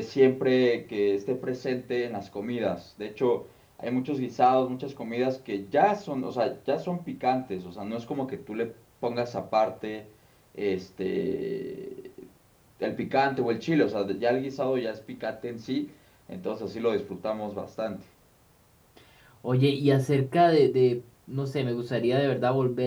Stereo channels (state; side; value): identical; both; correlation 1.00